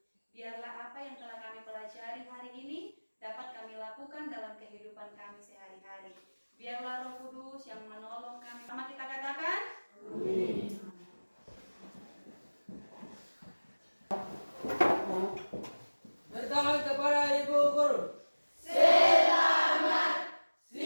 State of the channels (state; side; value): inverted; both; correlation -1.00